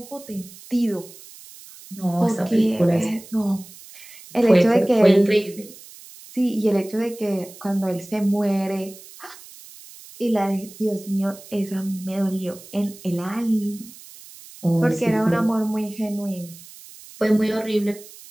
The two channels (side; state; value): right; noise; hiss, 19 dB below the sound